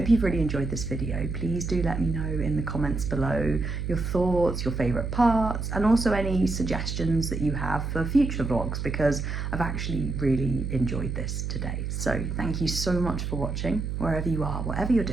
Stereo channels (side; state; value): right; noise; hum, 3 dB below the sound